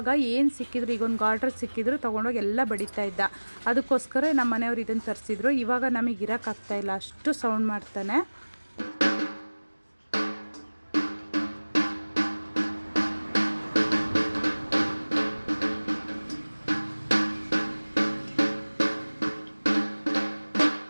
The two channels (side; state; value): both; inverted; correlation -1.00